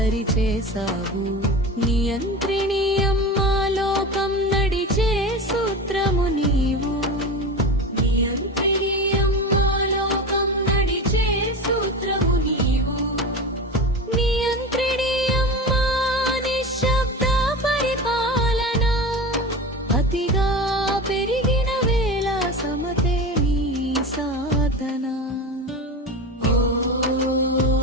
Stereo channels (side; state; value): both; normal; correlation 0.28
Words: నియంత్రిణి అమ్మా, లోకం నడిచే సూత్రము నీవు. నియంత్రిణి అమ్మా, లోకం నడిచే సూత్రము నీవు. నియంత్రిణి అమ్మా, నిశ్శబ్ద పరిపాలన. అతిగా పెరిగిన వేళ సమతే నీ సాధన. ఓం